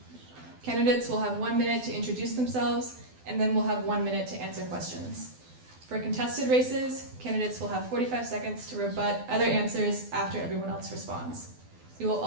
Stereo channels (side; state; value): left; late; 12 ms